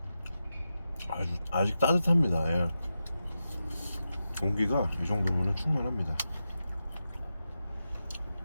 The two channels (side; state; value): both; inverted; correlation -0.90